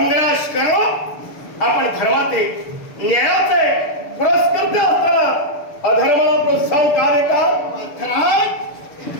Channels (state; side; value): late; right; 6.8 ms